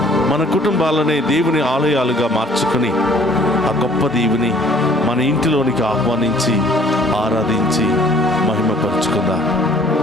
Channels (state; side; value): normal; both; correlation 0.56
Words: మన కుటుంబాలనే దేవుని ఆలయాలుగా మార్చుకుని ఆ గొప్ప దేవుని మన ఇంటిలోనికి ఆహ్వానించి ఆరాధించి మహిమపరుచుకుందాం.